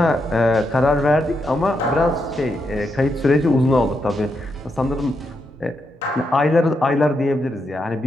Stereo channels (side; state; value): both; normal; correlation 0.82